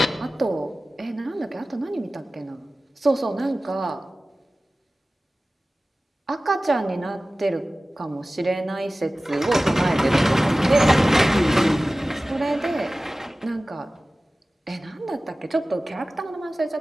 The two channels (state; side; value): normal; both; correlation 0.97